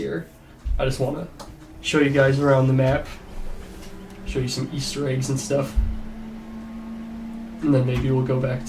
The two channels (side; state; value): both; identical; correlation 1.00